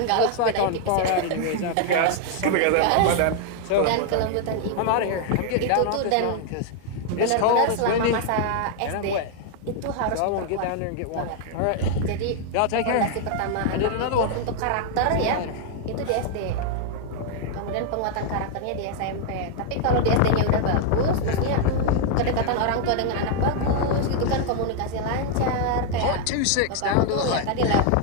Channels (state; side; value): different; both; correlation 0.00